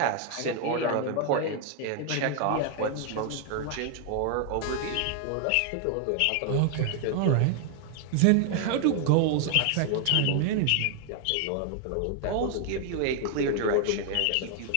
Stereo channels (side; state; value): both; different; correlation 0.00